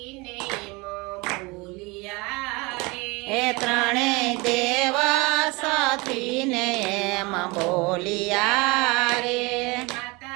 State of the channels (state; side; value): quieter; left; 25.8 dB